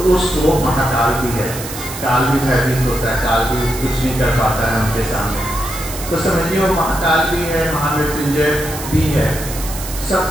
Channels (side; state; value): right; noise; hiss, 10 dB below the sound